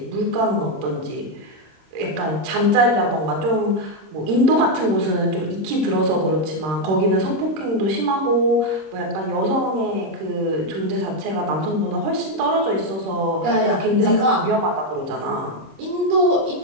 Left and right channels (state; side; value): late; left; 26 ms